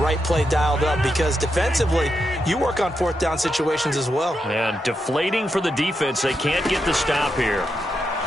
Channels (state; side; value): normal; both; correlation 0.84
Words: play dialed up because defensively, you work on 4th down situations as well. And deflating for the defense. They can't get the stop here.